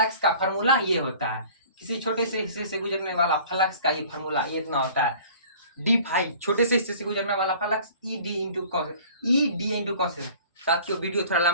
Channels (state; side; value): inverted; both; correlation -0.48